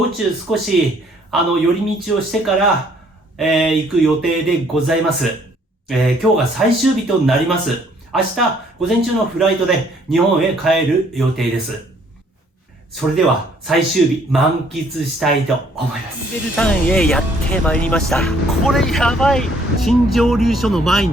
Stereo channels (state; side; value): normal; both; correlation 0.63